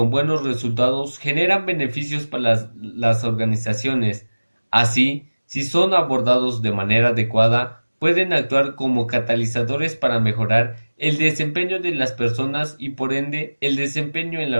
buenos resultados generan beneficios para las organizaciones. Así, si son abordados de manera adecuada, pueden actuar como catalizadores para mejorar el desempeño de las personas y por ende el desempeño en la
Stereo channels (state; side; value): inverted; both; correlation -1.00